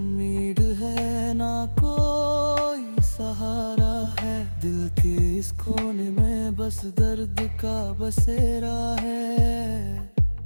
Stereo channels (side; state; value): both; inverted; correlation -1.00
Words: है, ना कोई सहारा है। दिल के इस कोने में बस दर्द का बसेरा है।